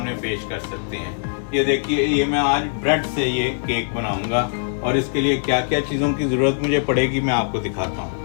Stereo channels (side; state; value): right; silent; digital silence